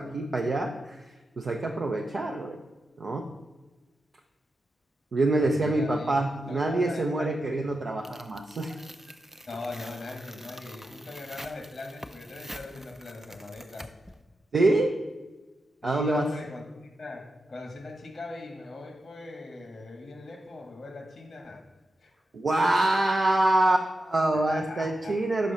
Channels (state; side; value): normal; both; correlation 0.89